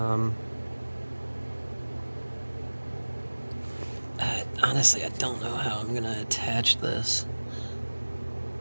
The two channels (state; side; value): inverted; both; correlation -1.00